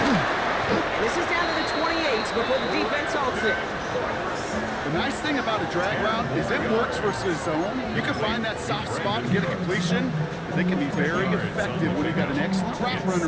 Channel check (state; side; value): identical; both; correlation 1.00